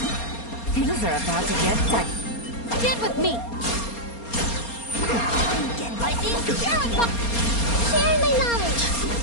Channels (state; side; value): late; right; 4.3 ms